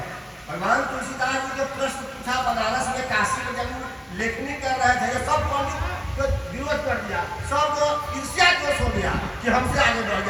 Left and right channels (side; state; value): both; identical; correlation 1.00